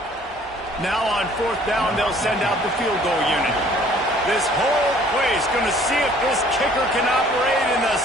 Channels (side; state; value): both; normal; correlation 0.56